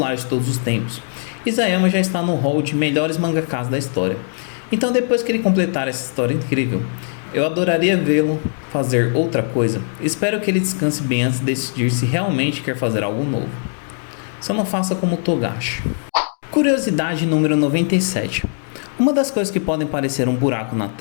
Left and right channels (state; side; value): silent; right; 66 dB below the other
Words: de todos os tempos, Isayama já está no hall de melhores mangakas da história. Então depois que ele completar essa história incrível, eu adoraria vê-lo fazer outra coisa. Espero que ele descanse bem antes de decidir se realmente quer fazer algo novo. Só não faça como Togashi. Curiosidade número 97. Uma das coisas que podem parecer um buraco na